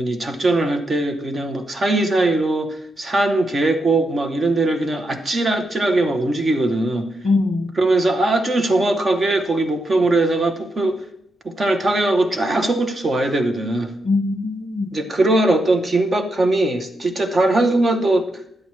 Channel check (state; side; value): normal; both; correlation 0.83